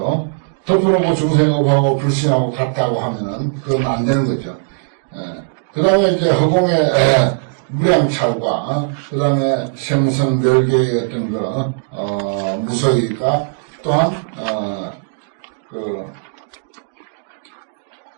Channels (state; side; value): silent; left; digital silence